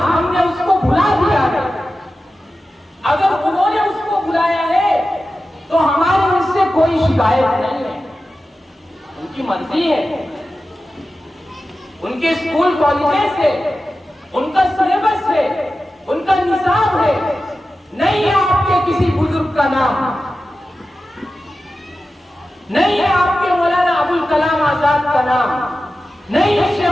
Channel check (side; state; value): both; normal; correlation 0.93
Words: ہم نے اس کو بھلا دیا ہے۔ اگر انہوں نے اس کو بلایا ہے تو ہماری اس سے کوئی شکایت نہیں ہے، ان کی مرضی ہے، ان کے اسکول کالجز ہے، ان کا سلیبس ہے، ان کا نصاب ہے، نہیں ہے آپ کے کسی بزرگ کا نام، نہیں ہے آپ کے مولانا ابوالکلام آزاد کا نام، نہیں ہے